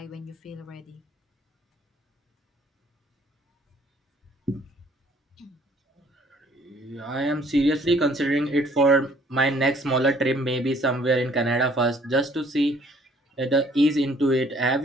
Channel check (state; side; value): normal; both; correlation 0.60